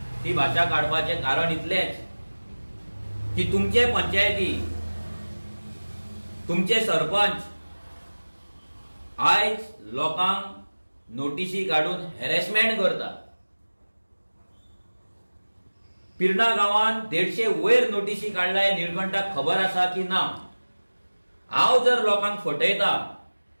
ती भाशा काडपाचें कारण इतलेंच की तुमचे पंचायती तुमचे सरपंच आयज लोकांक नोटीसी काडून हॅरेसमेंट करता पिर्णा गांवांत 150 वयर नोटीसी काडला हे निळकंठाक खबर आसा की ना हांव जर लोकांक फटयता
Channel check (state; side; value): inverted; both; correlation -1.00